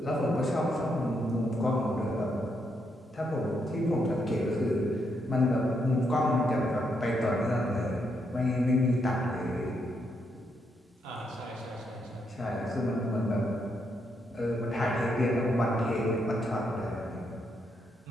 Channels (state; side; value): normal; both; correlation 0.78